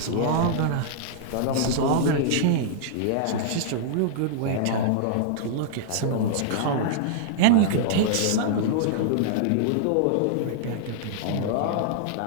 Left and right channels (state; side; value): different; both; correlation -0.01